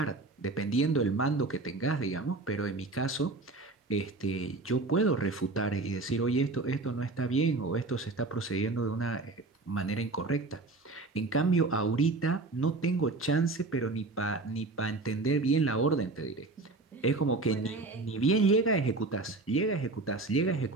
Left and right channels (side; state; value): left; quieter; 3.4 dB